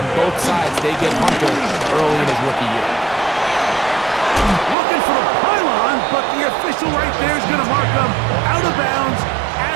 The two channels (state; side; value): drops out; left; at 4.8 s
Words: both sides they get Hunter early in his rookie year. Looking for the pylon, but the official right there is going to mark them out of bounds